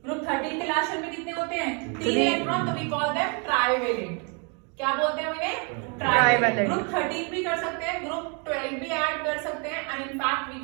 ग्रुप 13 के लास्ट शेल में कितने होते हैं? 3 इलेक्ट्रॉन, तो वी कॉल देम ट्राइवेलेंट। क्या बोलते हैं उन्हें? ट्राइवेलेंट। ग्रुप 13 भी कर सकते हैं, ग्रुप 12 भी ऐड कर सकते हैं and in fact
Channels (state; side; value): quieter; left; 35.4 dB